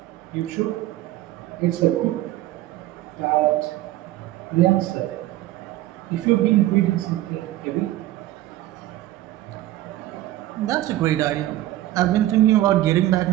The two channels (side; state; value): left; quieter; 15.2 dB